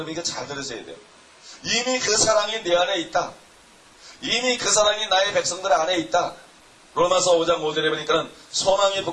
이거 잘 들으셔야 돼요. 이미 그 사랑이 내 안에 있다. 이미 그 사랑이 나의 백성들 안에 있다. 로마서 5장 5절에 보니까는 소망이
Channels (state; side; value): identical; both; correlation 1.00